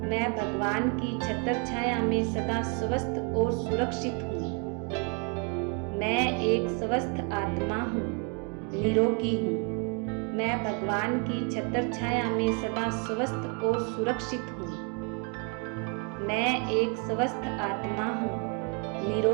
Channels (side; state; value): left; quieter; 36.1 dB